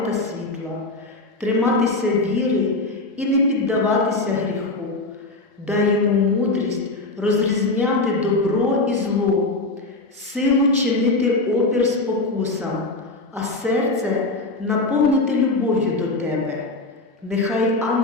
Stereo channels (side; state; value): right; quieter; 3.1 dB